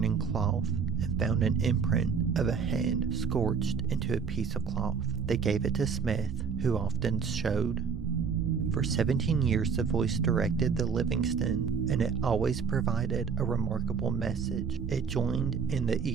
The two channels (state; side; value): quieter; left; 6.1 dB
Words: cloth and found an imprint of a hand scorched into a piece of cloth. They gave it to Smith, who often showed. For 17 years, the voice directed the Livingston, and it always provided a remarkable message. It joined in the